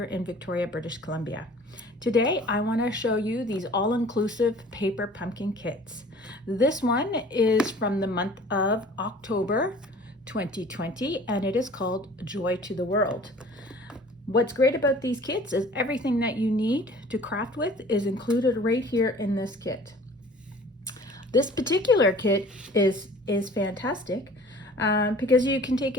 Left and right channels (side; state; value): both; normal; correlation 0.48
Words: in Victoria, British Columbia. Today I want to show you these all-inclusive paper pumpkin kits. This one is from the month of October 2020 and it is called Joy to the World. What's great about these kits is everything that you need to craft with is included right here in this kit. This particular kit is fantastic because you can take